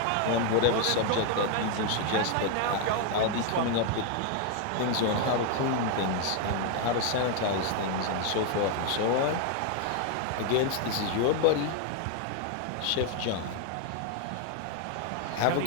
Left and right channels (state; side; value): different; both; correlation 0.00